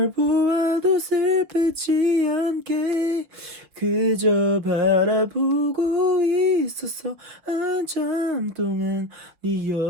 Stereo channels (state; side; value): late; left; 6.6 ms